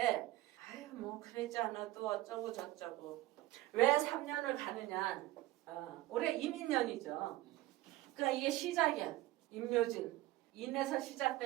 아유 뭐 그러지 않아도 어쩌고 저쩌고. 왜 3년을 가느냐? 올해 이민년이죠. 그러니까 이게 시작이야. 임묘진. 인에서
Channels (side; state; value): left; quieter; 17.0 dB